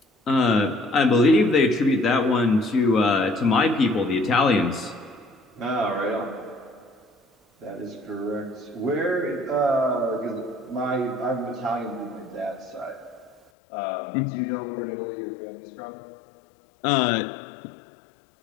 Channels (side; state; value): right; drops out; at 13.4 s